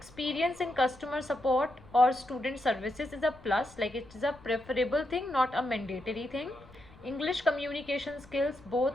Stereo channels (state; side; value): noise; left; rumble, 23 dB below the sound